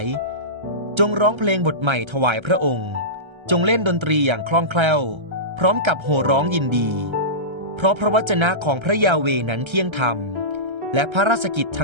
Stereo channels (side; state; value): left; late; 1.3 ms